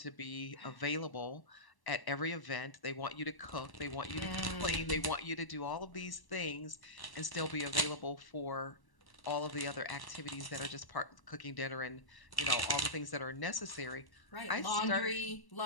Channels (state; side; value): late; right; 1.1 ms